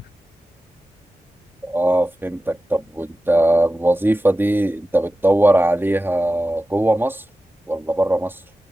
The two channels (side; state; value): both; normal; correlation 0.94